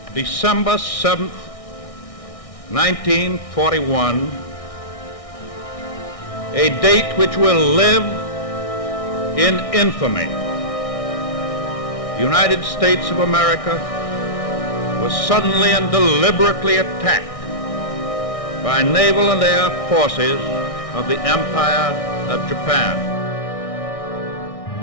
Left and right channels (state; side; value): late; right; 1.6 ms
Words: December 7th, 1941, a date which will live in infamy. The United States of America was suddenly and deliberately attacked by naval and air forces of the Empire of Japan.